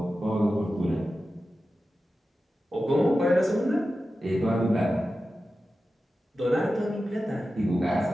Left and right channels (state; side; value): normal; both; correlation 0.93